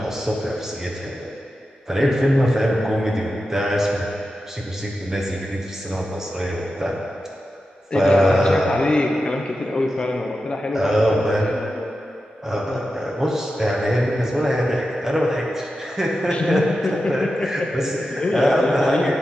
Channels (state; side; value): normal; both; correlation 0.91